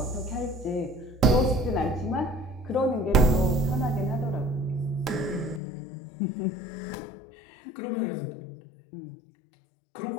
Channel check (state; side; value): drops out; right; at 5.6 s